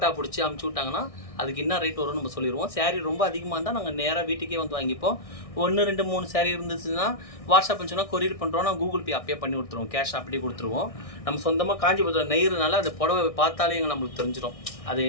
பிடிச்சி அமுச்சு விட்டாங்கன்னா அதுக்கு என்ன ரேட் வரும்னு நம்ம சொல்லிடுவோம். சேரீ ரொம்ப அதிகமாக இருந்தால் நாங்கள் நேராக வீட்டுக்கே வந்து வாங்கிப்போம். 1, 2, 3 சேரீ இருந்துச்சுன்னா வாட்ஸ்அப் சொன்னால் கொரியர் பண்ணுறோம், நான் கூகுள் பே அப்பயே பண்ணி கொடுத்துருவோம், கேஷ் அப்படியே கொடுத்துருவோம். நம்ம சொந்தமாக காஞ்சிபுரத்தில் நெய்கிறதுனால அந்த புடவை பார்த்தாலே நம்மளுக்கு தெரிஞ்சிடும் அது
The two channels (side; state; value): right; late; 1.6 ms